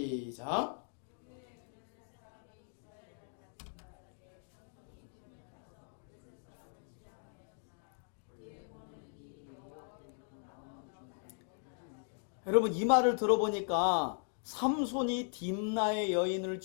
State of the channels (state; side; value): silent; right; 52 dB below the other